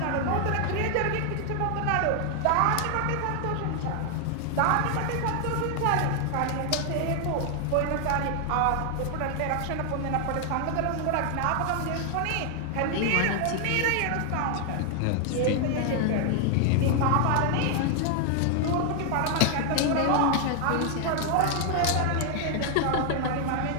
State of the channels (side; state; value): both; different; correlation 0.00